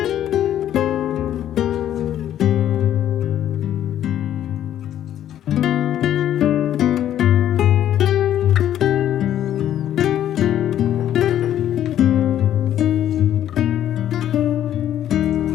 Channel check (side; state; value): right; quieter; 11.2 dB